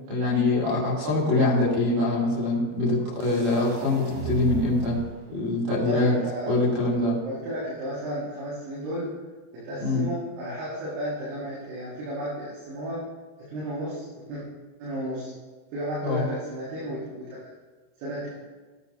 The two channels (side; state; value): left; late; 26 ms